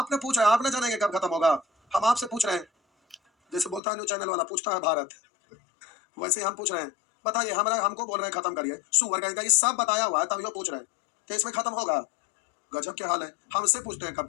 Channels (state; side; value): drops out; right; at 3.8 s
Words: पूछा है, आप ना जानेंगे कब खत्म होगा, हम आपसे पूछ रहे हैं। जैसे बोलता है न्यूज चैनल वाला पूछता है भारत, वैसे ही हम पूछ रहे हैं। बताइए, हमारा हमको बोल रहे हैं खत्म करिए, सुअर कहीं का ये सब बताया हुआ है, तभी वो पूछ रहे हैं कि इसमें खत्म होगा। गजब के हाल है, हमसे पूछते हैं कब